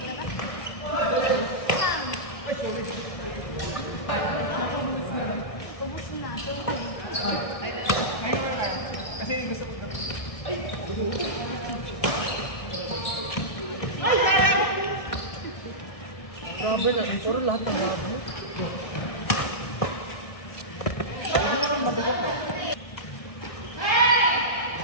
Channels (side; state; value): right; late; 1.6 ms